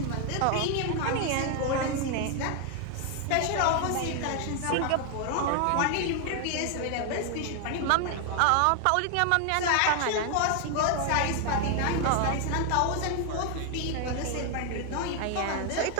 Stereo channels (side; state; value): both; different; correlation 0.00